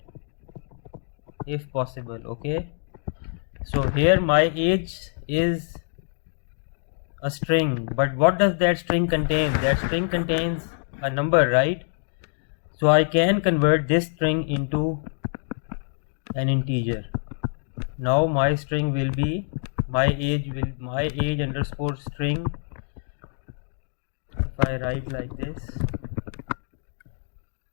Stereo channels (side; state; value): right; silent; digital silence